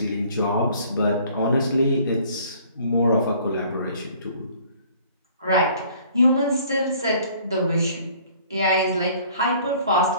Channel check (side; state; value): both; inverted; correlation -0.55